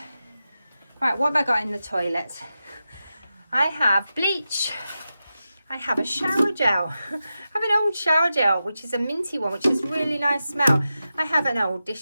Right, what have I got in the toilet? I have bleach. I have a shower gel. I have an old shower gel, which is a minty one, which is really nice smell. I have an old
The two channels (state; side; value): inverted; both; correlation -0.91